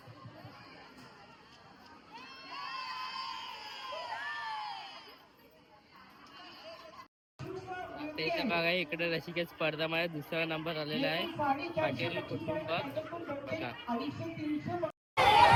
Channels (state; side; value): identical; both; correlation 1.00